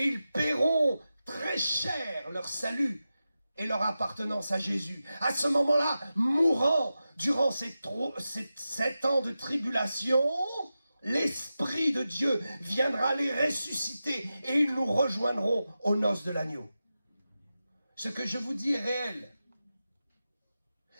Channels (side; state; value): both; inverted; correlation -0.92